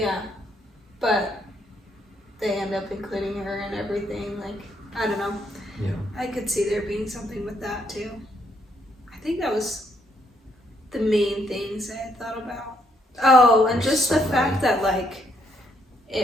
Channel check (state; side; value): normal; both; correlation 0.72